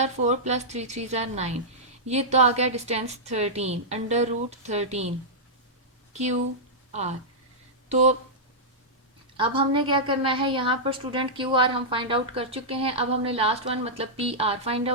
4 प्लस 3 3 जार 9। ये तो आ गया डिस्टेंस 13 √13 क्यू आर। तो अब हमने क्या करना है, यहाँ पर स्टूडेंट क्यू आर हम फाइंड आउट कर चुके हैं। अब हमने लास्ट वन मतलब पी आर फाइंड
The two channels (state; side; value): normal; both; correlation -0.11